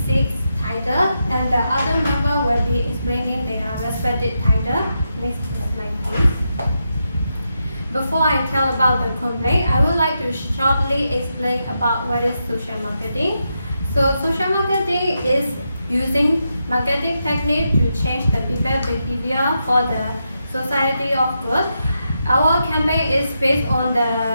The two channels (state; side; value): inverted; both; correlation -0.85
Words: 6 titles, and the other member will be explaining their respective title. Next slide, please. Before I tell about the complaint, I would like to shortly explain about what is social marketing. So social marketing is using marketing technique to change the people's behavior for the society of good. Our campaign is based on the